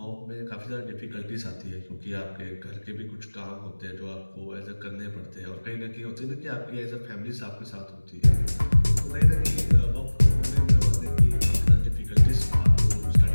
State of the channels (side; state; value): both; inverted; correlation -1.00